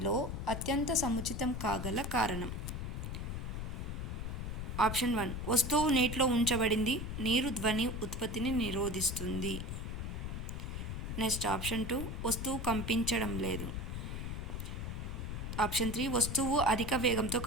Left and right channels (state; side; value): noise; left; rumble, 4 dB below the sound